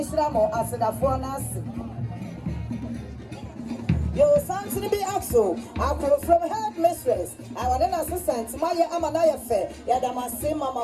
I said, I for Nasi. Yo, something be axo. I come from head mistress. I want an assistant. Maya Amanaya fair. Yadamase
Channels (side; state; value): both; identical; correlation 1.00